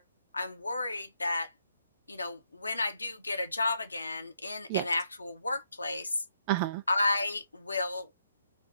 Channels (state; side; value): inverted; both; correlation -0.76